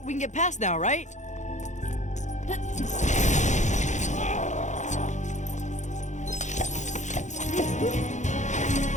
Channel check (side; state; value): right; late; 0.35 ms